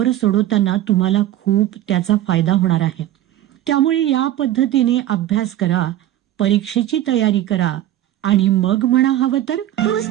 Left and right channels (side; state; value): left; quieter; 13.1 dB